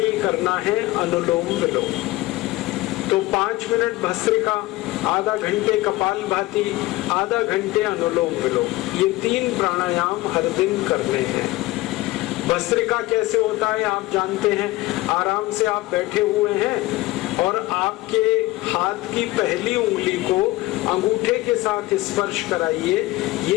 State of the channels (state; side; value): quieter; right; 19.0 dB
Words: करना है अनुलोम विलोम। तो 5 मिनट भस्त्रिका, आधा घंटे कपालभाति, आधा घंटे अनुलोम विलोम, ये 3 प्राणायाम हर दिन करने हैं। भस्त्रिका कैसे होता है आप जानते हैं। आराम से आप बैठे हुए हैं और आपके हाथ की पहली उंगली को अंगूठे के साथ स्पर्श कराइए।